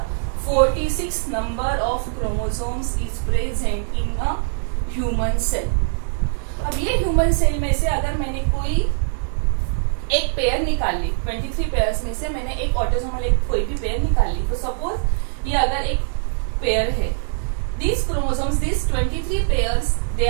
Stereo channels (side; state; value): left; silent; digital silence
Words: 46 number of chromosomes is present in a human cell. अब ये ह्यूमन सेल में से अगर मैंने कोई एक पेयर निकाल ली, 23 पेयर्स में से मैंने एक ऑटोसोमल एक कोई भी पेयर निकाल ली, तो सपोज ये अगर एक पेयर है, these chromosomes, these 23 pairs, they